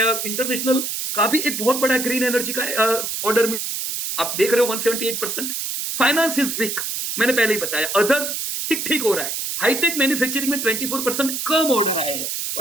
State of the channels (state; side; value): noise; right; hiss, 3 dB below the sound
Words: इंटरनेशनल का भी एक बहुत बड़ा ग्रीन एनर्जी का ऑर्डर में, आप देख रहे हो 178%। फाइनेंस इज वीक, मैंने पहले ही बताया। अदर्स ठीक ठीक हो रहा है। हाईटेक मैन्युफैक्चरिंग में 24% कम ऑर्डर आए हैं,